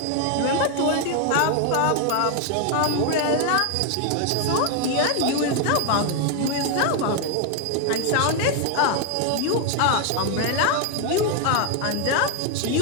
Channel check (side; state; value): both; different; correlation 0.01